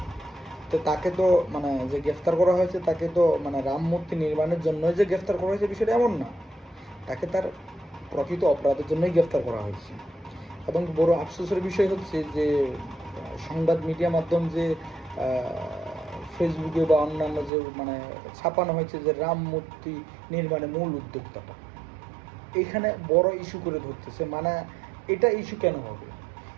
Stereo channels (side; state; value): left; drops out; at 17.5 s